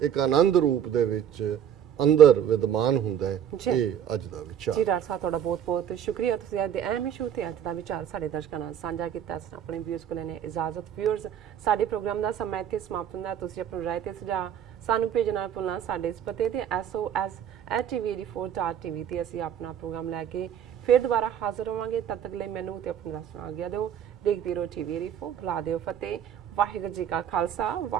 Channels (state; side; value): quieter; left; 9.3 dB